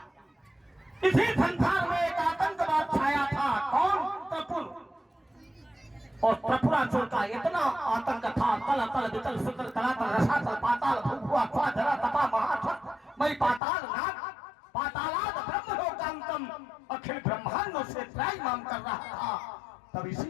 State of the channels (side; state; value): right; drops out; at 13.6 s